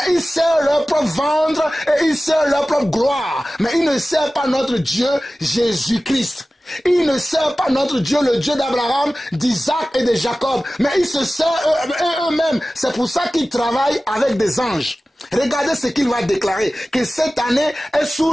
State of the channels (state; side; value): normal; both; correlation 0.96